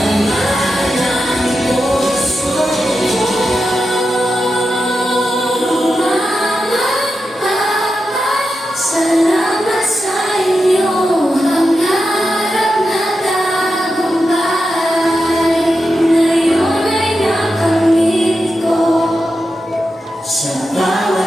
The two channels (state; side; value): normal; both; correlation 0.89